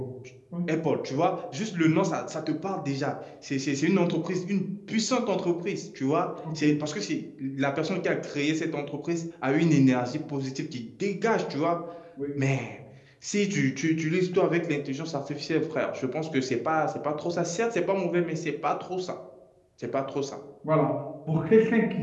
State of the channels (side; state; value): both; identical; correlation 1.00